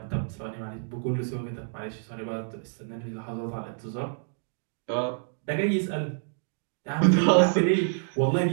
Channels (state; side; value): silent; left; digital silence